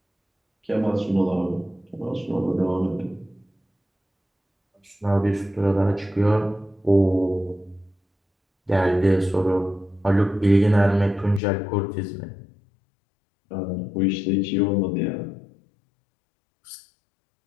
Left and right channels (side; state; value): right; drops out; at 11.4 s